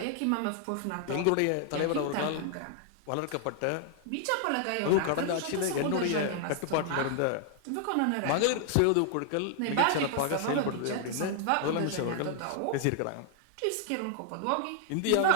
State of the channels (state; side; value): different; both; correlation 0.00